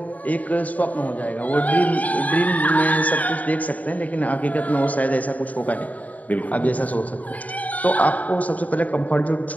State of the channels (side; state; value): right; late; 0.072 ms